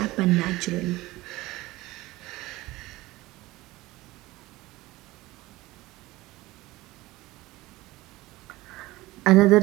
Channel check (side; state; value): left; quieter; 19.1 dB